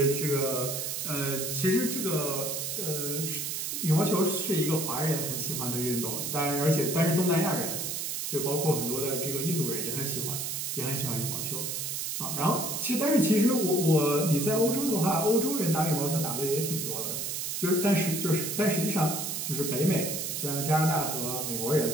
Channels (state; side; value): noise; right; hiss, 3 dB below the sound